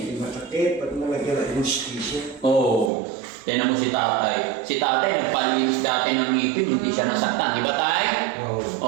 masakit pag nalagyan ng anesthesia. Oo. Tignan mo si tatay. Si tatay nagpalinis dati ng ngipin, hindi siya nasaktan. Di ba tay? Oo.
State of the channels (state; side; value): drops out; left; at 2.9 s